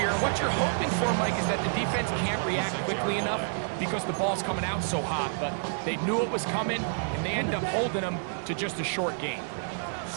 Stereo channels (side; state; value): left; silent; digital silence